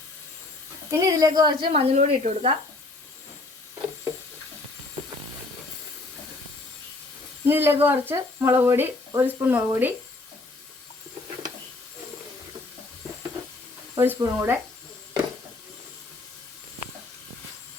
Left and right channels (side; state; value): right; quieter; 3.1 dB